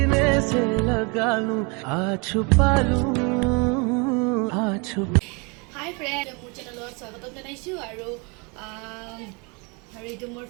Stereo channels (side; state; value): left; quieter; 31.3 dB